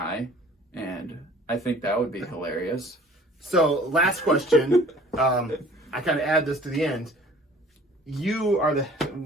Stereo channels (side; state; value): both; normal; correlation 0.51